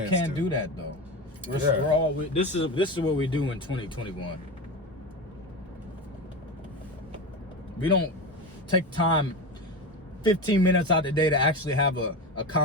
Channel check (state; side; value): normal; both; correlation 0.22